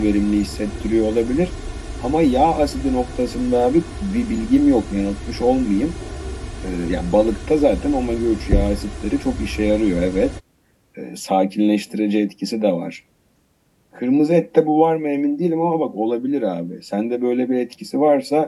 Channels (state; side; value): identical; both; correlation 1.00